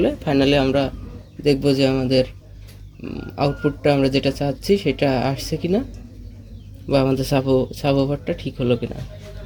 ফাইনালি আমরা দেখব যে আমাদের আউটপুটটা আমরা যেটা চাচ্ছি সেটা আসছে কিনা, বা আমাদের সাবওয়ুফারটা ঠিক হলো কিনা।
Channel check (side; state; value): both; identical; correlation 1.00